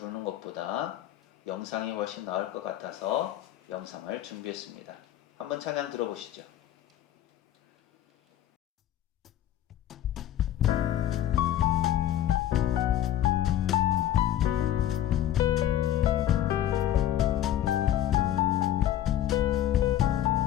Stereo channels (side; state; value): right; quieter; 11.8 dB